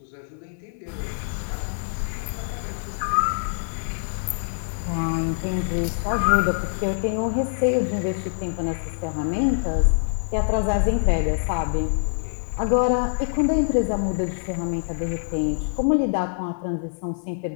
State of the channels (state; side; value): silent; right; digital silence